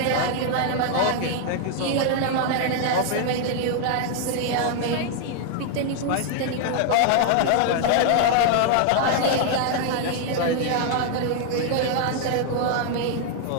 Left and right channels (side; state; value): both; different; correlation 0.00